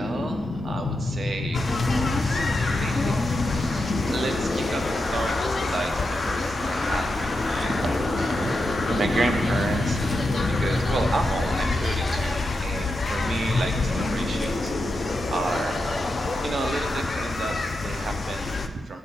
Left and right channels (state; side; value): normal; both; correlation 0.87